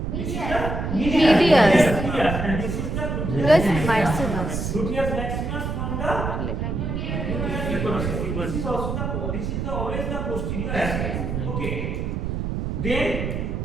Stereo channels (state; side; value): noise; right; rumble, 2 dB below the sound